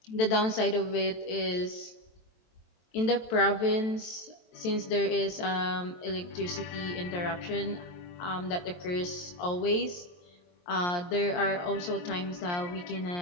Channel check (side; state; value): right; late; 23 ms